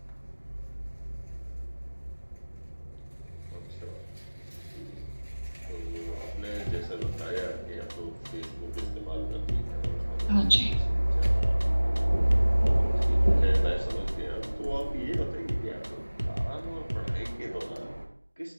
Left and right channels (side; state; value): both; inverted; correlation -1.00